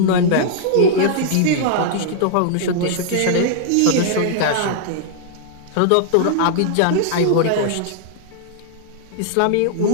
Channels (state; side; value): different; both; correlation -0.01